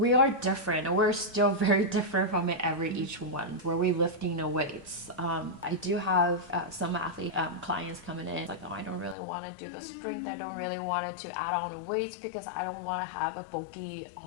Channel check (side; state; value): right; drops out; at 9.2 s